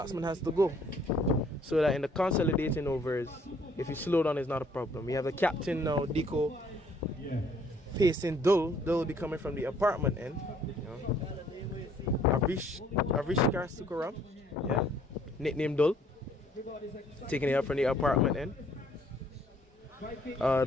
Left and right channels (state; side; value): normal; both; correlation 0.62